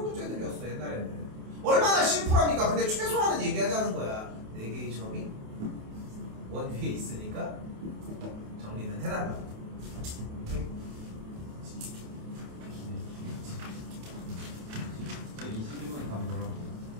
문제들이었어 옛날에는. 얼마나 심플합니까? 근데 최소한은 얘기하자는 거야. 4개의 점이 원 위에 있으니까 정리는 해달라. 21번 답 뭐라고?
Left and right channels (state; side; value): late; left; 28 ms